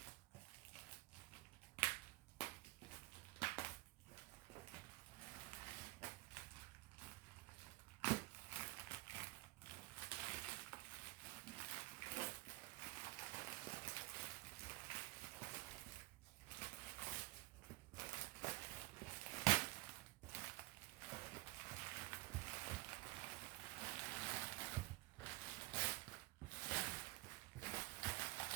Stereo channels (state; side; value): quieter; left; 21.2 dB